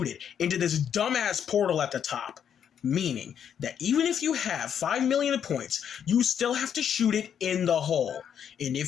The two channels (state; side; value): quieter; right; 8.5 dB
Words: it into this dumbass portal at the top. Meaning that even if you have 5 million points, you still have to shoot it in the hole. And